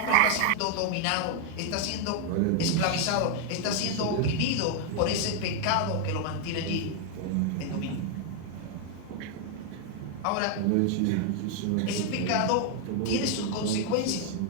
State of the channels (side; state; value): both; different; correlation 0.00